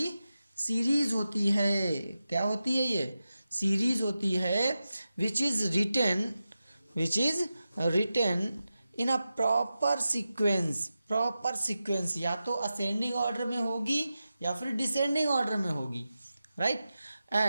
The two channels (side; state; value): both; inverted; correlation -0.92